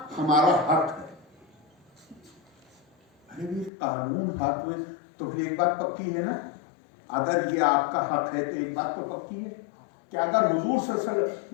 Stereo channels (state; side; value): drops out; right; at 3.7 s